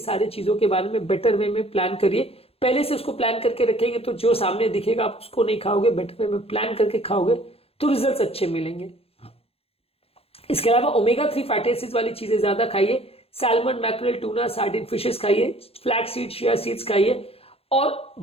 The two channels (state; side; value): late; right; 0.28 ms